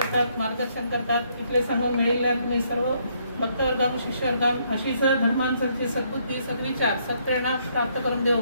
मार्गदर्शन करतात. इतले सांगून मेळिल्ल्या तुम्ही सर्व भक्तवर्गांक शिष्यवर्गांक अशीच धर्मांची सद्बुद्धी सद्विचार सत्प्रेरणा प्राप्त करून देव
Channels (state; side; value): inverted; both; correlation -0.71